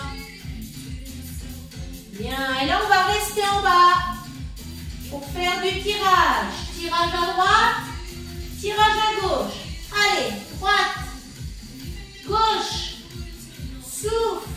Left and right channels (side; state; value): both; identical; correlation 1.00